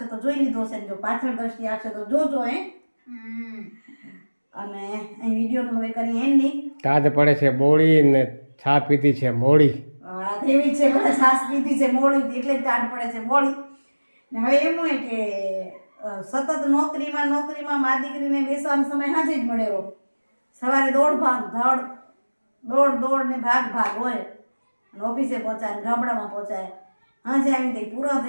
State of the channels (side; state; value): both; inverted; correlation -1.00